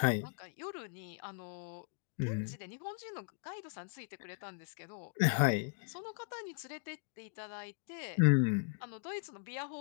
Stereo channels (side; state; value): right; silent; digital silence